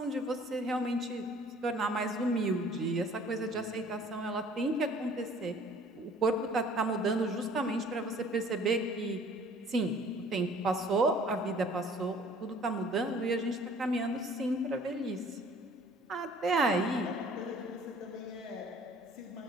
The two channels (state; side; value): normal; both; correlation 0.53